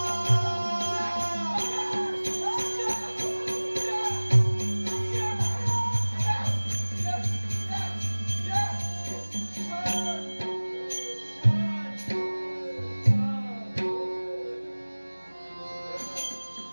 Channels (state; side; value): inverted; both; correlation -1.00